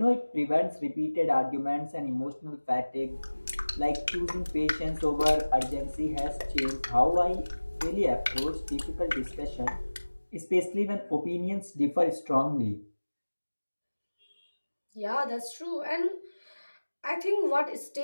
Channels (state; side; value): inverted; both; correlation -1.00